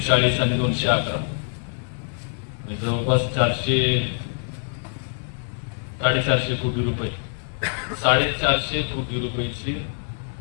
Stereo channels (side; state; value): right; silent; digital silence